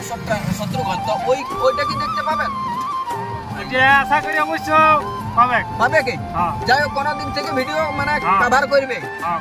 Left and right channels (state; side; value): identical; both; correlation 1.00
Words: তো ওইটা কি দেখতে পাবেন? এটা আশা করি অবশ্য পাবে কি? যাই হোক, কোনদিন থেকে ভিডিও মানে কভার করবে।